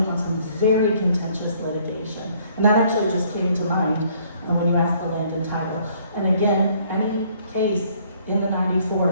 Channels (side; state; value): both; inverted; correlation -0.62